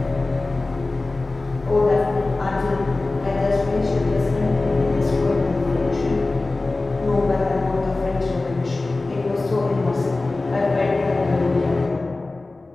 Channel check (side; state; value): right; quieter; 3.2 dB